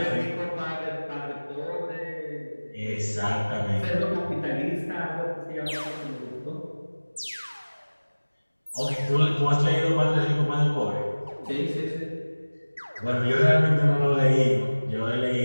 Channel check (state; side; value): inverted; both; correlation -1.00